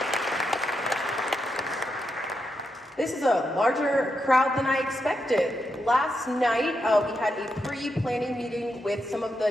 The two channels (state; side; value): normal; both; correlation 0.84